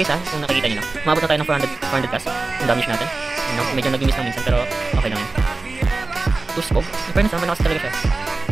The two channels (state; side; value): quieter; left; 3.4 dB